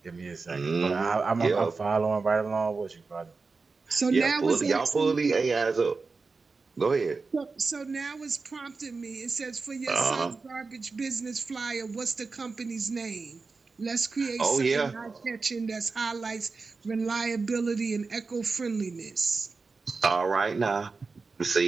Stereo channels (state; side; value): quieter; left; 4.3 dB